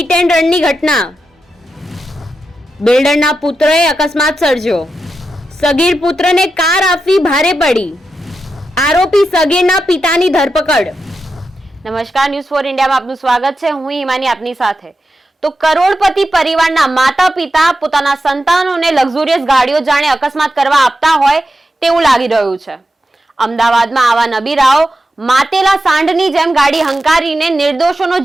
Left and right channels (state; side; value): normal; both; correlation 0.89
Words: and રનની ઘટના, બિલ્ડરના પુત્રએ અકસ્માત સર્જ્યો, સગીર પુત્રને કાર આપવી ભારે પડી, આરોપી સગીરના પિતાની ધરપકડ। નમસ્કાર, ન્યૂઝ ફોર ઇન્ડિયામાં આપનું સ્વાગત છે। હું હિમાની આપની સાથે। તો કરોડપતિ પરિવારના માતા પિતા પોતાના સંતાનોને લક્ઝુરિયસ ગાડીઓ જાણે અકસ્માત કરવા આપતા હોય તેવું લાગી રહ્યું છે। અમદાવાદમાં આવા નબીરાઓ માતેલા સાંઢની જેમ ગાડી હંકારીને નિર્દોષોનો